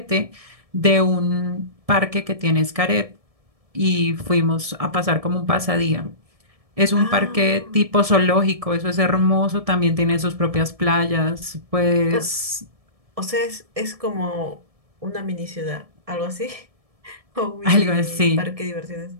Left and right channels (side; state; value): left; late; 1.7 ms